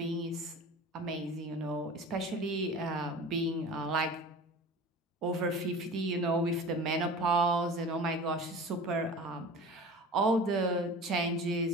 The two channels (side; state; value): both; normal; correlation 0.37